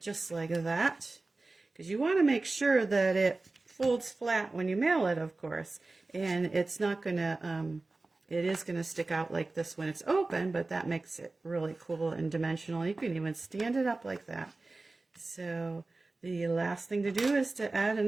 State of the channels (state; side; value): quieter; left; 3.3 dB